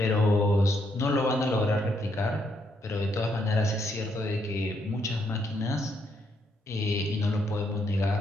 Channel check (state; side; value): normal; both; correlation 0.75